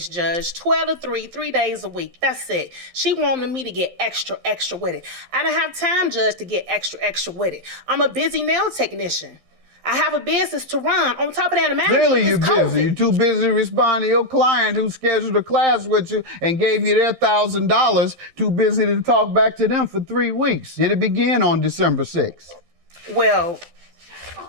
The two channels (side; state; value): left; late; 11 ms